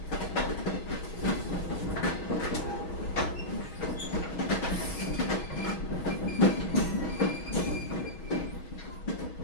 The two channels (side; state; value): right; late; 6.3 ms